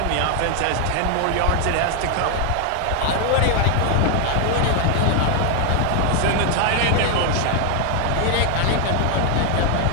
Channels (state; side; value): different; both; correlation 0.00